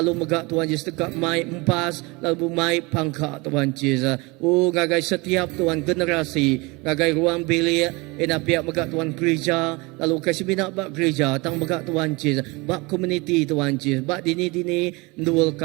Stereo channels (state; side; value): quieter; left; 25.6 dB